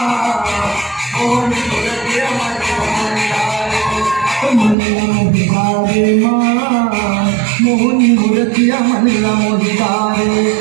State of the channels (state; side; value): drops out; left; at 4.8 s